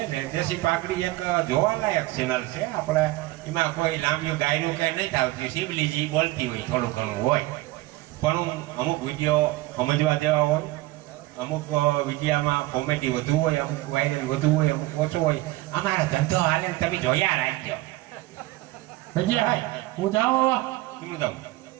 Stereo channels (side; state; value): left; quieter; 18.6 dB